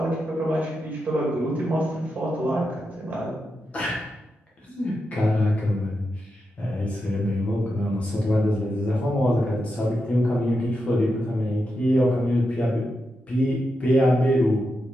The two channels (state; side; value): normal; both; correlation 0.87